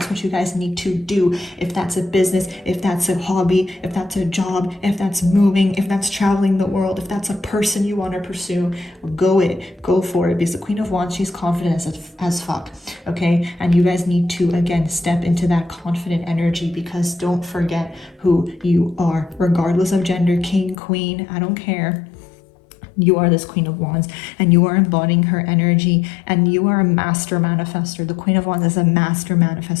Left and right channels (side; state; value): right; drops out; at 20.8 s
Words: what you guys need to do. If that's a business, if that's a hobby, if that's a job, if that's moving, if that's traveling the world, if that's a person you want to pursue, go for it, because the Queen of Wands, she's confident as fuck, okay? And you guys need to, again, step into that confident energy, because don't forget who you are, regardless of gender, king, queen, I don't care. You are this Queen of Wands, and you are embodying her energy, and you are a master manifester. The Queen of Wands is a master